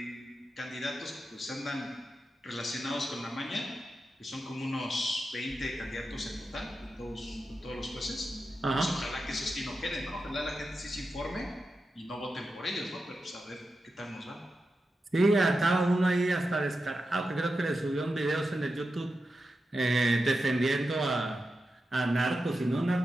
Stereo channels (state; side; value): normal; both; correlation 0.90